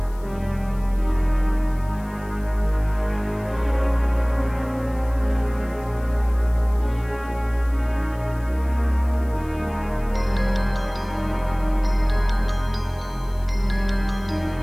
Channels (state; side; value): noise; left; hiss, 26 dB below the sound